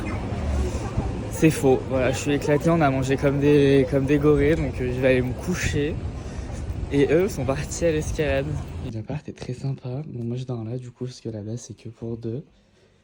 C'est faux, voilà, je suis éclaté, on a mangé comme des gorées, donc je vais aller me coucher. Et eux sont partis à l'escalade. L'appart est très sympa, bon moi je dors là du coup, parce que là-bas c'est que pour 2.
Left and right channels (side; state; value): both; identical; correlation 1.00